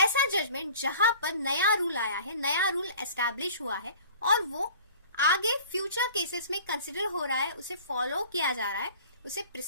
जजमेंट जहां पर नया रूल आया है, नया रूल एस्टैब्लिश हुआ है और वो आगे फ्यूचर केसेस में कंसिडर हो रहा है, उसे फॉलो किया जा रहा है, उसे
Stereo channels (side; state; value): both; inverted; correlation -0.45